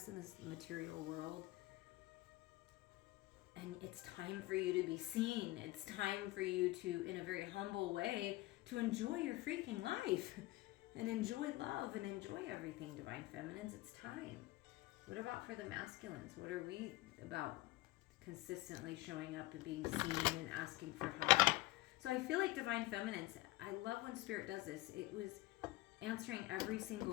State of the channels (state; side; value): quieter; right; 18.7 dB